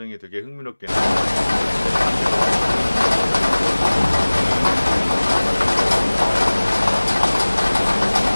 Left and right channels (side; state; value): both; inverted; correlation -1.00